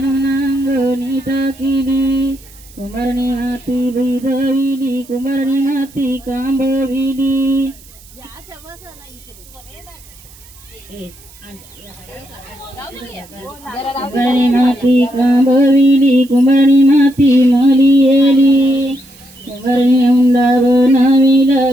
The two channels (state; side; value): noise; right; hiss, 24 dB below the sound